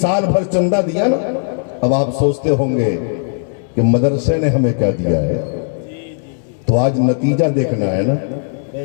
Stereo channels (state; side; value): silent; right; digital silence